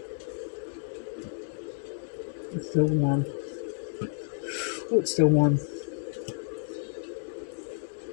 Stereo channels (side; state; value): right; silent; digital silence